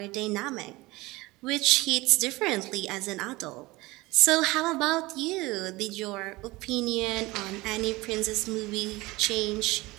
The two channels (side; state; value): left; quieter; 21.1 dB